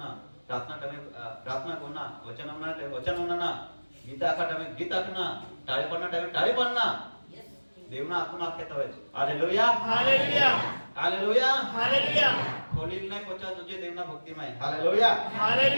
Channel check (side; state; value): both; inverted; correlation -1.00